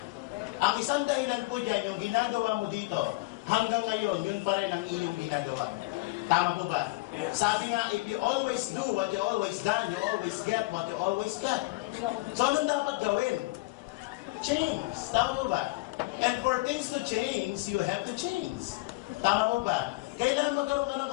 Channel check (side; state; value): right; quieter; 23.0 dB